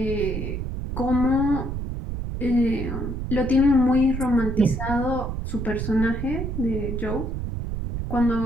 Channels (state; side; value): noise; right; rumble, 4 dB below the sound